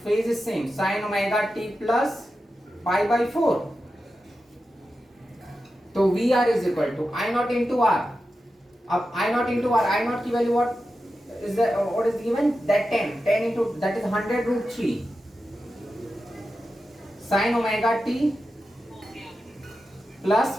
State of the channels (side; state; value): both; normal; correlation 0.91